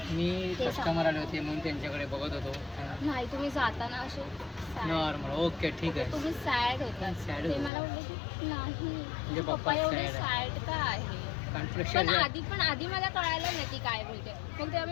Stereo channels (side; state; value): right; drops out; at 7.7 s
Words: मी ते कस्टमर आले होते म्हणून त्यांच्याकडे बघत होतो. नाही तुम्ही जाताना असे sad. नॉर्मल. ओके ठीक आहे. तुम्ही सॅड होता. Sad ते होतो. मला बोलले की नाही म्हणजे पप्पा पप्पा एवढे sad सॅड का आहे? कारण पण प्रेशर आधी मला कळालं नाही ती काय बोलते. मग तेव्हा